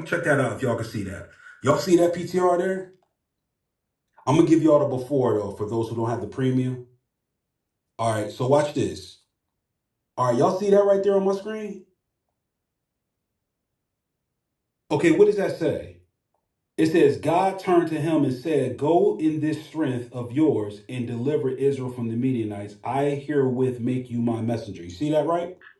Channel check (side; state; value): both; identical; correlation 1.00